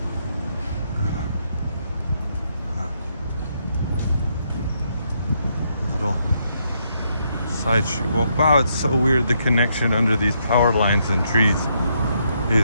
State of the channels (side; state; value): both; inverted; correlation -0.76